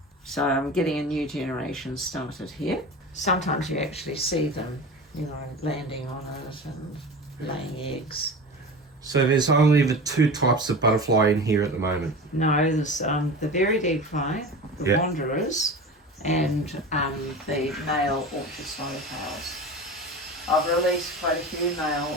So I'm getting a new generation started here. Sometimes you actually see them, you know, landing on it and laying eggs. So there's only the two types of butterfly in here at the moment? No, there's the varied egg fly, the wanderers, and the male orchard swallowtails. I've released quite a few male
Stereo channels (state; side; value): normal; both; correlation 0.32